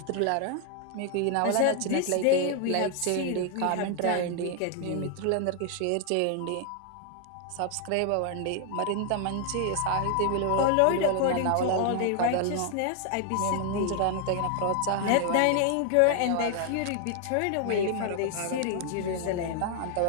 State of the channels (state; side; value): different; both; correlation 0.00